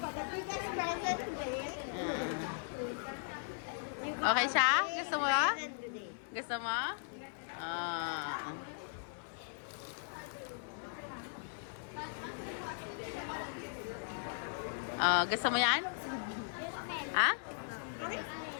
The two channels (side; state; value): right; silent; 52 dB below the other